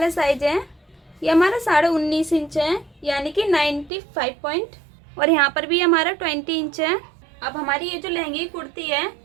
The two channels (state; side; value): drops out; left; at 3.9 s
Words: साइज है, ये हमारा 19.5 इंच है, यानी कि 95 पॉइंट। और यहाँ पर भी हमारा 20 इंच है। अब हमारी ये जो लहंगे की कुर्ती है,